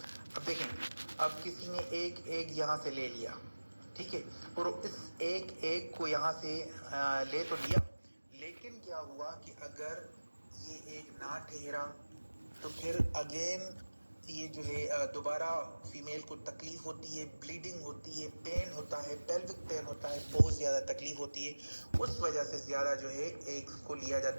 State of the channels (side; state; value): both; inverted; correlation -1.00